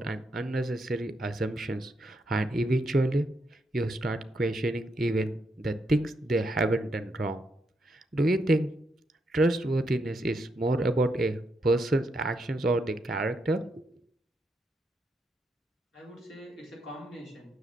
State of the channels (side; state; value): both; normal; correlation 0.80